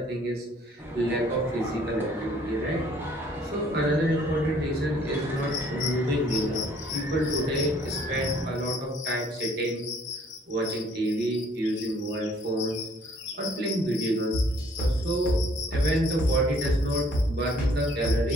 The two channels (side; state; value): both; normal; correlation 0.60